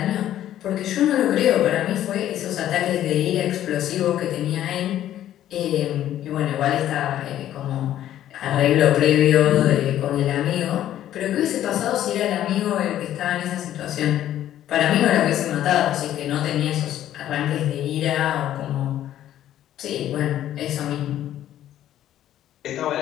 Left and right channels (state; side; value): quieter; right; 12.1 dB